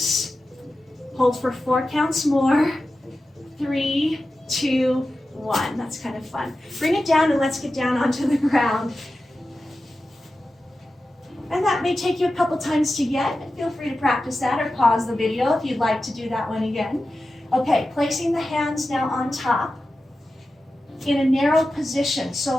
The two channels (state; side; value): normal; both; correlation 0.93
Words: Hold for 4 counts more. 3, 2, 1. That's kind of fun. Bring it down and let's get down onto the ground. And that may take you a couple times to get. Feel free to practice that or pause the video if you'd like to do that one again. Okay, placing the hands now on top in a narrow position.